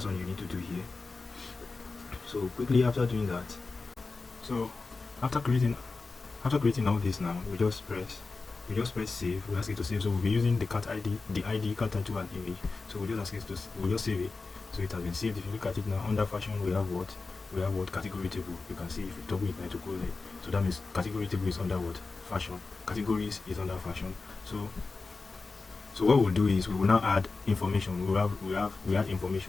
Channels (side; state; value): right; quieter; 3.9 dB